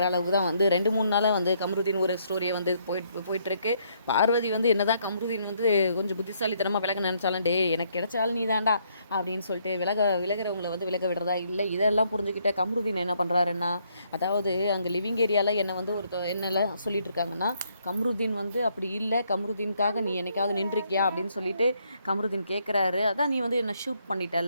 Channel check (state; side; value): inverted; both; correlation -0.71